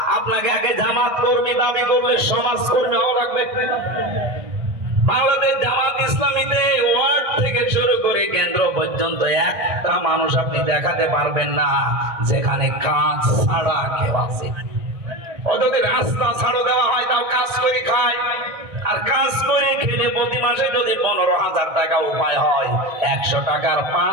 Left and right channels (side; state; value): left; late; 1.6 ms